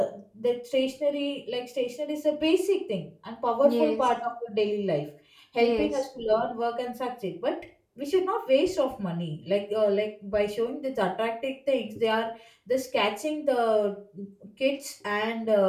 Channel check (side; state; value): both; identical; correlation 1.00